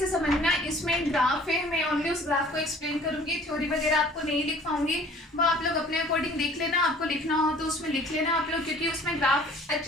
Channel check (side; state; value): both; normal; correlation 0.52